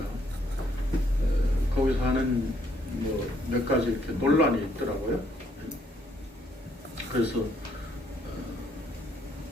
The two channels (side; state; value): both; normal; correlation 0.70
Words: 거기서 하는 뭐 몇 가지 이렇게 논란이 있더라고요. 그래서